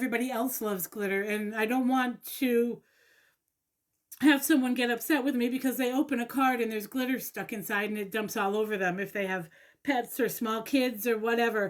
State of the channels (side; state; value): both; identical; correlation 1.00